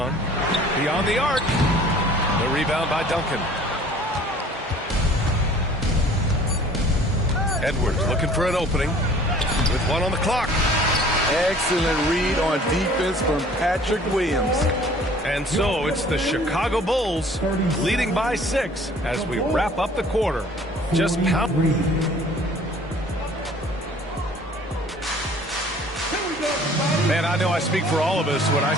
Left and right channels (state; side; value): normal; both; correlation 0.52